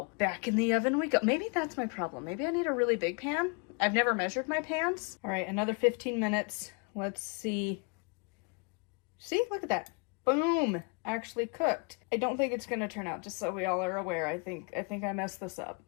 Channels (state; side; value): quieter; right; 33.9 dB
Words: back in the oven we go. Maybe that's my problem. Maybe I need a really big pan. I've never measured my pans. All right, another 15 minutes. Let's see. See, look at that. Boom, actually cooked. I don't think it's gonna turn out, just so we all are aware. I think I messed this up.